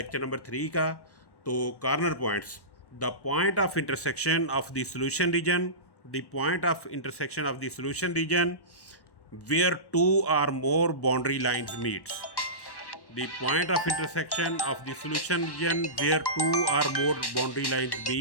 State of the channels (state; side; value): late; right; 1.1 ms